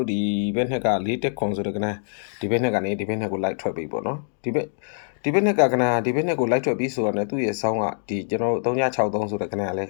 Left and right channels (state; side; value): silent; right; digital silence